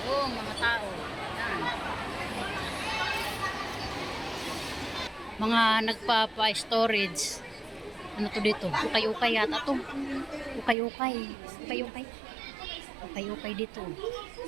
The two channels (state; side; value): drops out; left; at 10.8 s